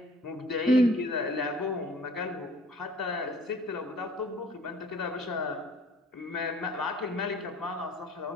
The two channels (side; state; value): both; normal; correlation 0.52